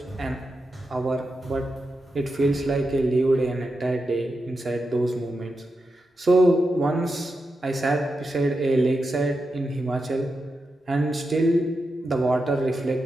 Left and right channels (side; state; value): both; normal; correlation 0.88